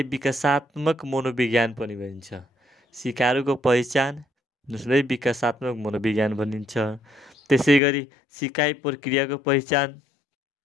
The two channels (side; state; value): right; drops out; at 7.8 s